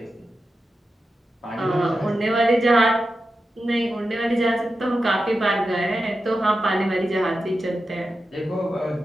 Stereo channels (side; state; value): both; normal; correlation 0.91